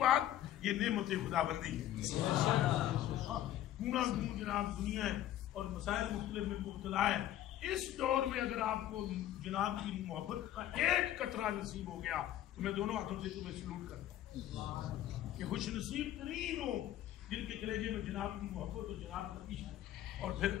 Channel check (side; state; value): right; quieter; 12.6 dB